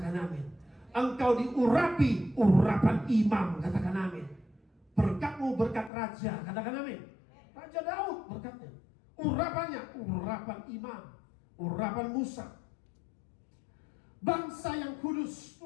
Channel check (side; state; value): right; drops out; at 5.9 s